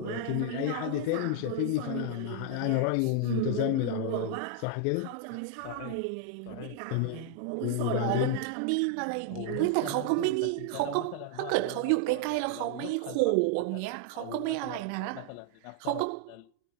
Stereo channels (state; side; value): different; both; correlation 0.00